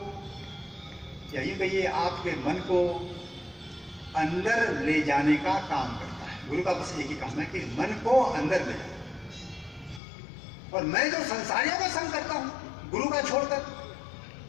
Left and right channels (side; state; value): right; drops out; at 10.0 s